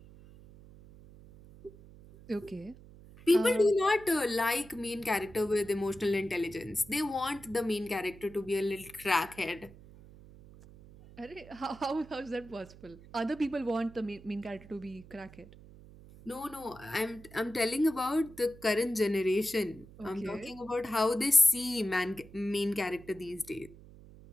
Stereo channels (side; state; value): right; noise; hum, 20 dB below the sound